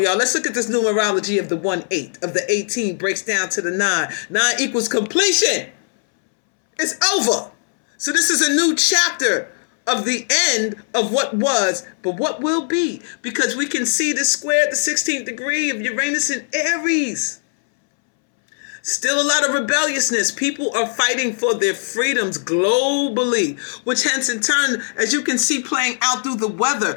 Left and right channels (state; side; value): silent; right; 64 dB below the other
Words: y'all, let's look at this numerology of the 1-8, of the 18 breaks down to the 9. 9 equals completion. It's over. So this is a new chapter of the end of what was, but what will be, because we can see the square at the 16th degree of Uranus in Aries. Still a lot of rebelliousness. People are fighting for their freedoms globally, which hence in turn, as you can see playing out through the